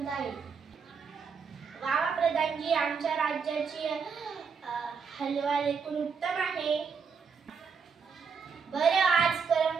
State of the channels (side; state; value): left; quieter; 5.9 dB